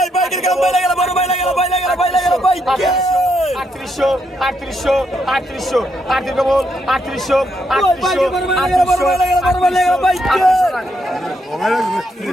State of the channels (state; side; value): normal; both; correlation 0.78